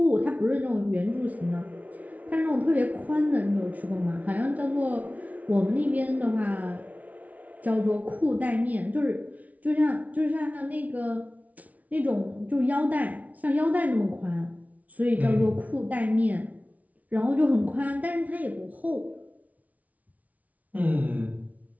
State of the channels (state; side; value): late; left; 0.071 ms